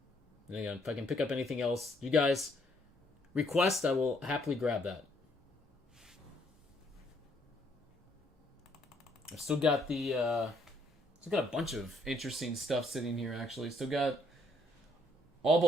And again, if I can pick up anything else, you guys request, I will happily grab that. I've still got a bunch of interesting stuff sitting here. Actually, still got all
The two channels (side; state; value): both; normal; correlation 0.69